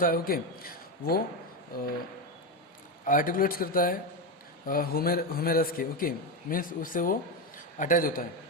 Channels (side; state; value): both; normal; correlation 0.13